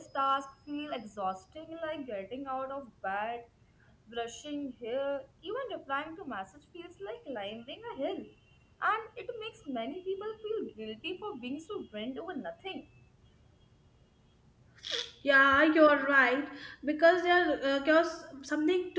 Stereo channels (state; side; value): identical; both; correlation 1.00